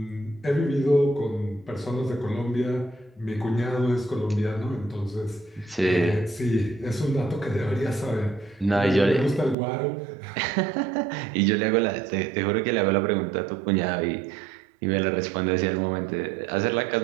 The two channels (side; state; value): left; drops out; at 9.6 s